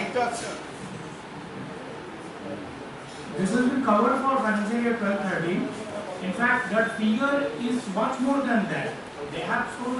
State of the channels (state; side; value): identical; both; correlation 1.00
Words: This has been covered for financial year 12-13. In fact, that figure is much more than that. They have shown